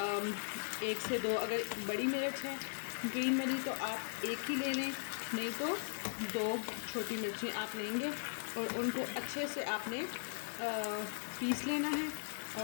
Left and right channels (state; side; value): silent; right; digital silence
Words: 1 से 2 अगर बड़ी मिर्च है ग्रीन वाली तो आप 1 ही ले लें, नहीं तो 2 छोटी मिर्चें आप लेंगे और उनको अच्छे से आपने पीस लेना है